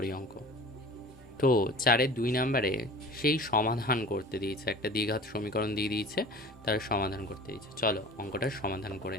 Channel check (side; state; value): both; normal; correlation 0.40